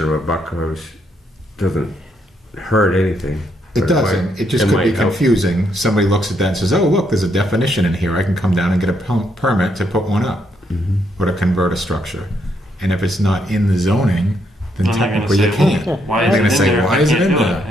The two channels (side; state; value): both; normal; correlation 0.75